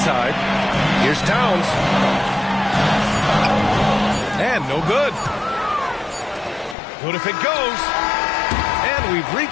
Here's Towns. And no good. Good if it goes. And we've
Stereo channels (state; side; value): drops out; right; at 6.8 s